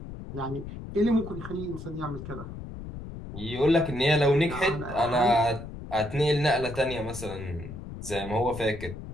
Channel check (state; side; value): noise; left; rumble, 11 dB below the sound